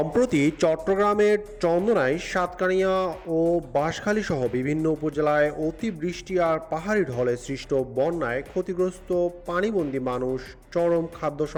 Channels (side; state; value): both; identical; correlation 1.00